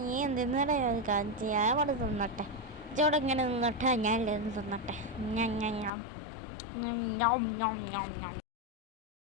നീ എന്തിനാ കാണിച്ച്? ഞാൻ അവിടെ തിന്നട്ടെ. ഇച്ചോടെ ഇങ്ങനെ നിന്നട്ടെ, ഞാൻ തിന്നട്ടെ.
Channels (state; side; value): drops out; right; at 5.9 s